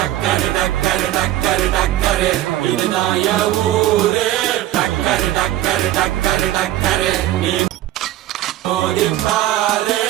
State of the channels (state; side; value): quieter; left; 14.0 dB